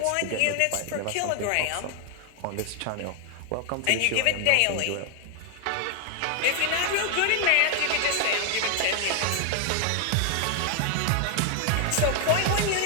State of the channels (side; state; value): both; different; correlation 0.00